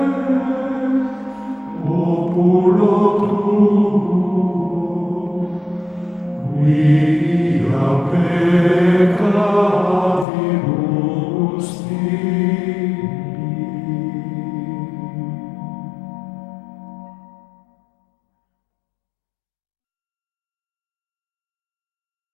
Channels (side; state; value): right; drops out; at 10.2 s